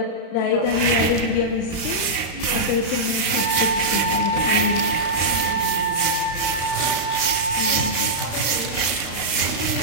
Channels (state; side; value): late; right; 35 ms